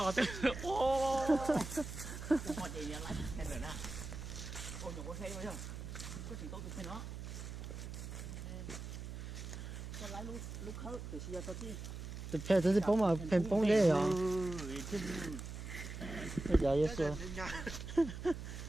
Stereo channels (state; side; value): noise; right; hum, 8 dB below the sound